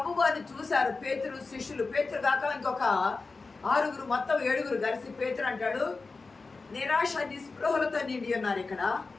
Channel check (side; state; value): right; quieter; 4.0 dB